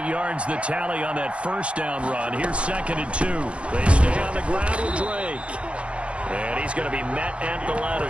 yards the tally on that first down run. Here's 2nd and 2. They stay on the ground with Drake. And he's going to be met at the line of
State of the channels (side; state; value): left; late; 0.061 ms